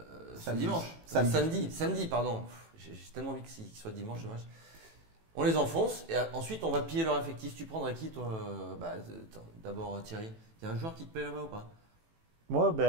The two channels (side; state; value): left; late; 18 ms